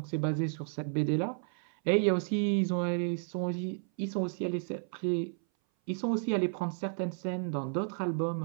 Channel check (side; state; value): left; silent; 56 dB below the other